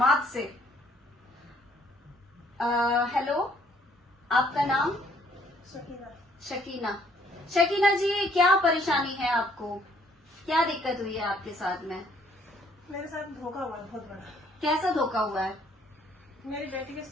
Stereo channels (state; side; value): normal; both; correlation 0.65